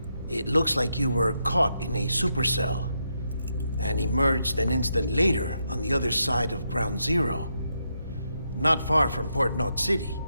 It looks like you were caught in a supercell and emerged an instant later on the other side of Ground Zero. Not far from Port Knot City.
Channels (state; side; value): inverted; both; correlation -0.82